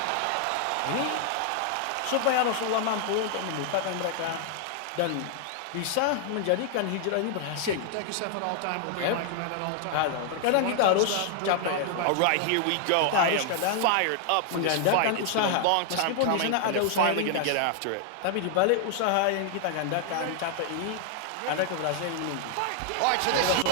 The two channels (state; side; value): different; both; correlation 0.00